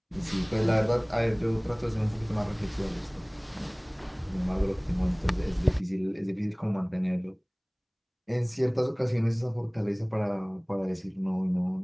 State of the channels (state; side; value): identical; both; correlation 1.00